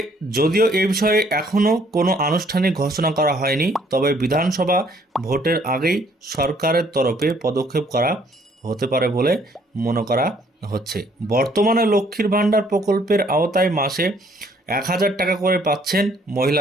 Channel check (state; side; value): normal; both; correlation 0.63